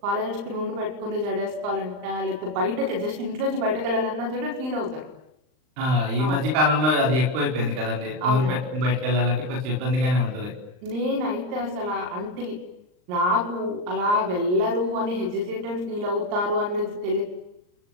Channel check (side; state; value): left; late; 39 ms